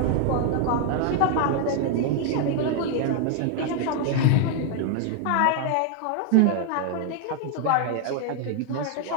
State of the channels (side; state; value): both; different; correlation 0.00